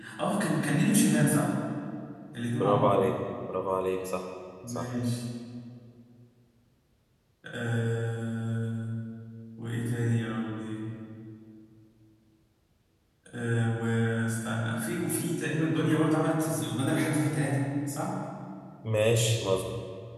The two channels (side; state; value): both; identical; correlation 1.00